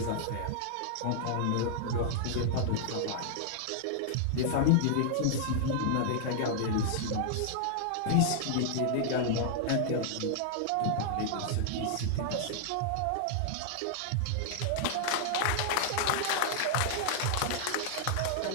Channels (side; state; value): both; different; correlation -0.01